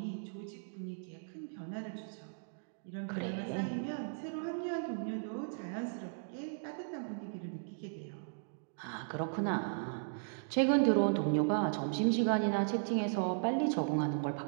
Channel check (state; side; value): silent; left; digital silence